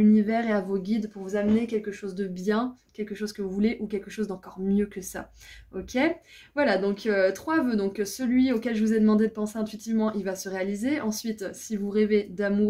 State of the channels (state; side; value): identical; both; correlation 1.00